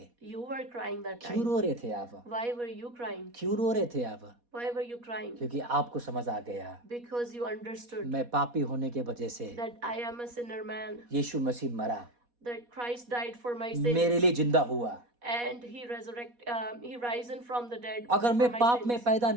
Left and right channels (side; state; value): left; late; 4.2 ms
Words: you were crying that क्यों time. रो रहे थे आप? Why were you crying? क्यों रो रहे थे आप? Why were you crying? क्योंकि आपको समझ आ गया, Because you understood मैं पापी होने के वजह से that I am a sinner man, यीशु मसीह मरा, that Christ died for my मेरे sins, लिए जिंदा हुआ. and he risen from the dead अगर for मैं my पाप में sins. पैदा